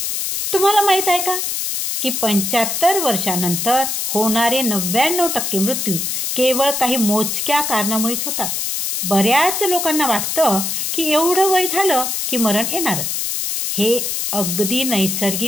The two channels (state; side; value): noise; left; hiss, 1 dB below the sound